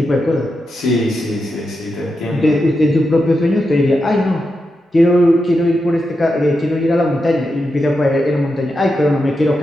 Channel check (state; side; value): normal; both; correlation 0.87